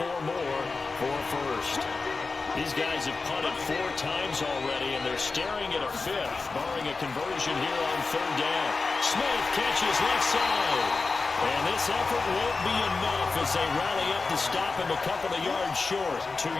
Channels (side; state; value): right; quieter; 4.1 dB